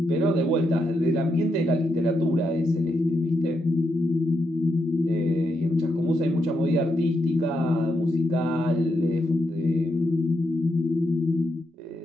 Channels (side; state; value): both; normal; correlation 0.82